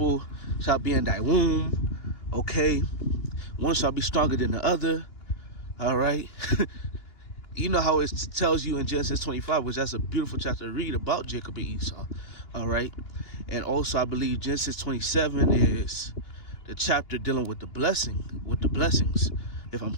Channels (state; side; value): late; right; 2.9 ms